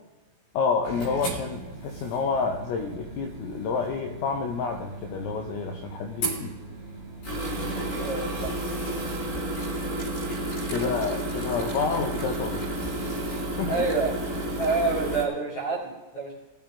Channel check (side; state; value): right; late; 17 ms